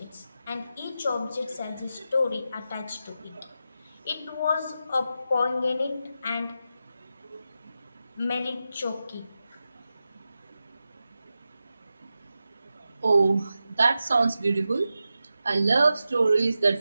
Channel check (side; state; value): both; inverted; correlation -0.91